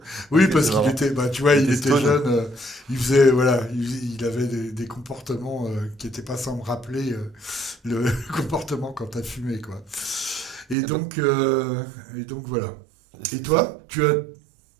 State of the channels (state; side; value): drops out; left; at 10.8 s